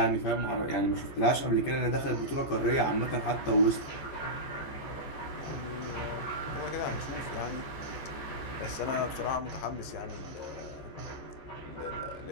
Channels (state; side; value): late; right; 14 ms